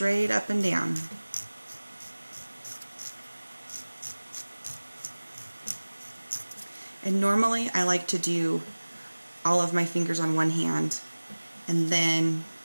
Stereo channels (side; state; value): both; inverted; correlation -1.00